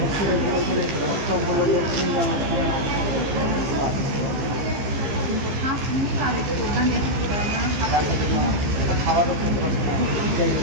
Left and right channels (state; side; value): late; left; 15 ms